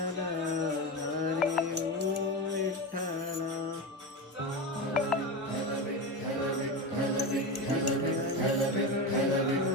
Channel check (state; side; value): normal; both; correlation 0.19